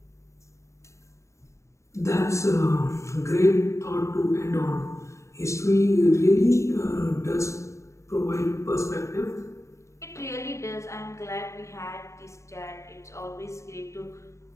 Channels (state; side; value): late; right; 0.14 ms